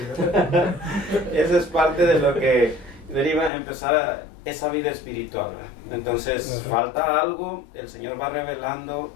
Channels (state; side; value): drops out; right; at 3.5 s